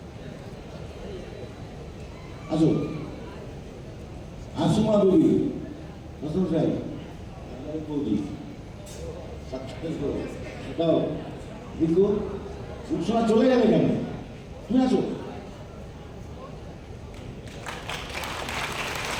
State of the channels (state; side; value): identical; both; correlation 1.00